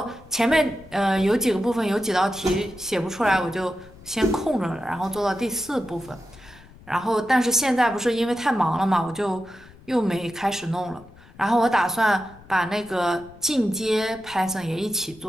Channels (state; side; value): noise; left; rumble, 22 dB below the sound